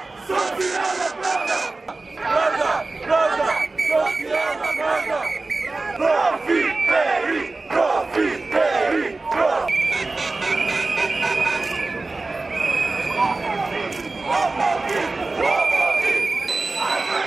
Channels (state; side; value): quieter; left; 3.4 dB